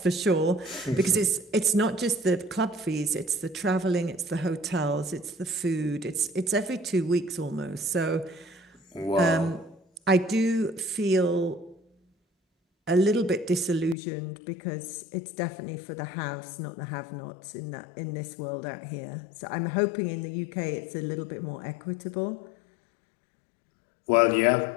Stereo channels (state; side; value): drops out; right; at 14.0 s